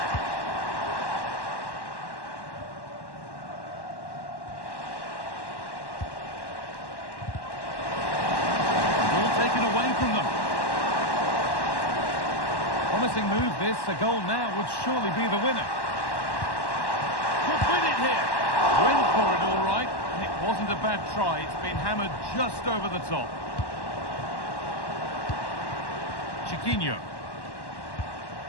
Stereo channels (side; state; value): right; late; 1.1 ms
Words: Promising move this. A goal now would surely be the winner. Could win it here. Went for it all right. And it wasn't a bad try. It's been hammered just over the top. Chiquinho.